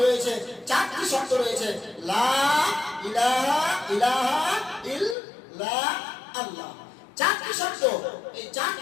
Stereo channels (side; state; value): right; drops out; at 5.2 s